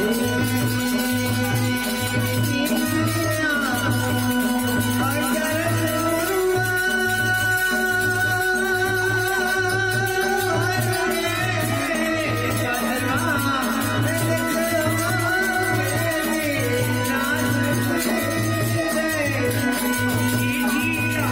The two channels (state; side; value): noise; left; hum, 18 dB below the sound